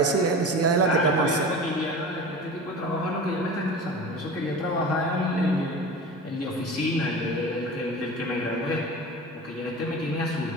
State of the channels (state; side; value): normal; both; correlation 0.33